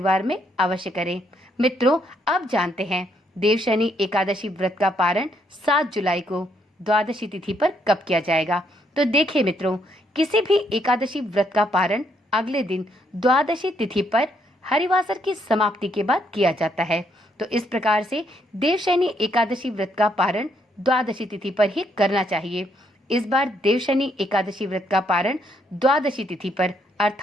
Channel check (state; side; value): normal; both; correlation 0.73